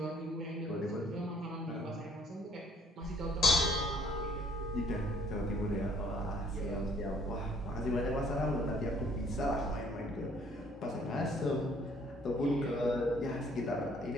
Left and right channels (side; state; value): both; normal; correlation 0.61